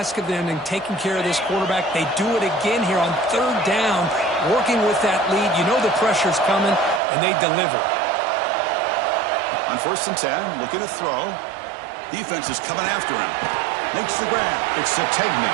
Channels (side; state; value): left; drops out; at 7.0 s